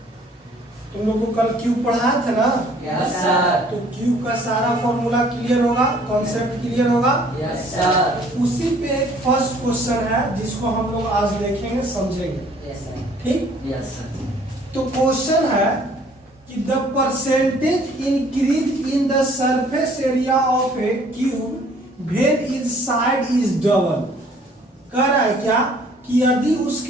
तुम लोग को कल क्यूब पढ़ाया था ना? Yes sir. तो क्यूब का सारा फॉर्मूला क्लियर होगा, कॉन्सेप्ट क्लियर होगा? Yes sir. उसी पे एक फर्स्ट क्वेश्चन है जिसको हम लोग आज देखेंगे, समझेंगे। Yes sir. ठीक? Yes sir. तो क्वेश्चन है कि the percentage increase in the surface area of a cube when is side is double. कह रहा है क्या कि यदि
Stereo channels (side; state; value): both; normal; correlation 0.58